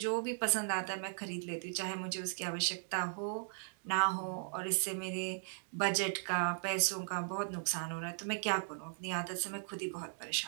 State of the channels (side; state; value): left; silent; digital silence